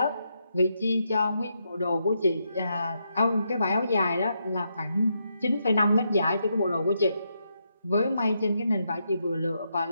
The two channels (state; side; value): inverted; both; correlation -0.81